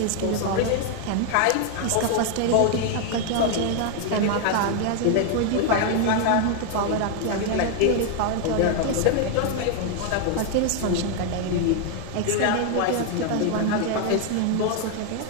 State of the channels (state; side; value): different; both; correlation 0.00